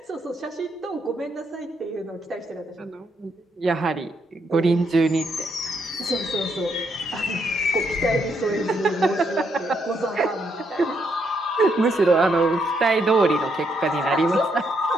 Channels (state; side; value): normal; both; correlation 0.76